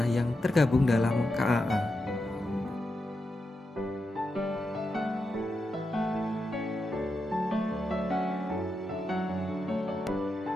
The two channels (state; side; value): normal; both; correlation 0.87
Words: yang tergabung dalam KAA.